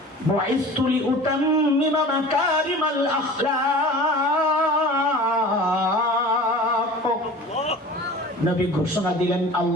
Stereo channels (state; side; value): normal; both; correlation 0.40